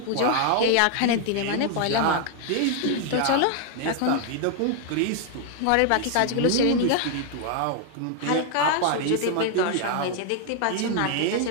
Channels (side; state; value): both; different; correlation 0.00